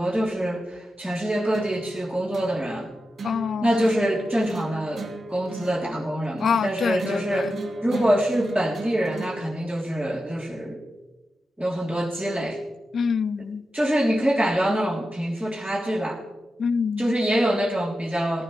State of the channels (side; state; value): both; normal; correlation 0.90